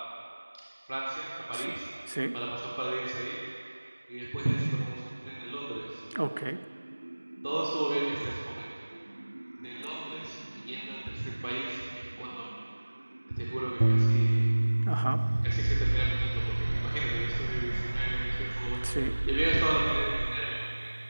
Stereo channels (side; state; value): both; inverted; correlation -1.00